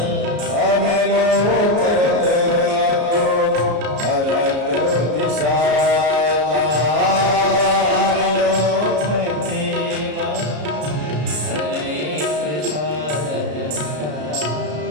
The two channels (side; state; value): left; late; 33 ms